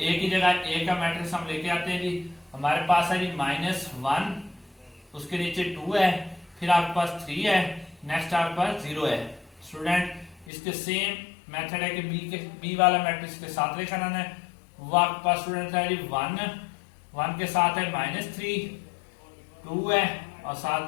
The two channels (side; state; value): right; drops out; at 10.5 s